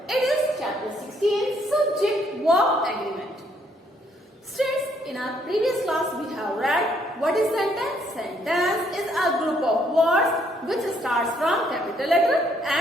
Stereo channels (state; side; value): normal; both; correlation 0.69